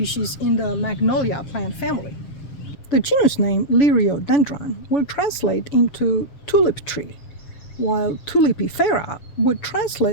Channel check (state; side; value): late; right; 7.0 ms